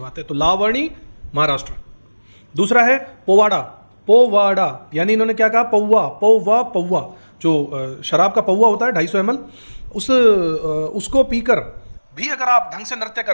है। तो लावणी महाराष्ट्र। दूसरा है पोवाड़ा। पोवाड़ा यानी इन्होंने क्या कहा, पौवा पौवा पौवा, जो शराब का पौवा होता है 250 ml, उसको पीकर भी अगर आप ढंग से नृत्य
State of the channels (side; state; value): both; inverted; correlation -1.00